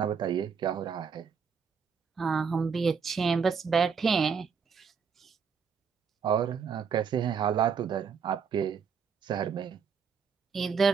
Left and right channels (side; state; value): left; quieter; 6.3 dB